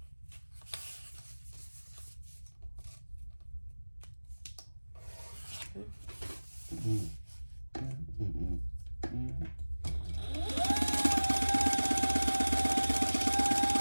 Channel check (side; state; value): both; inverted; correlation -1.00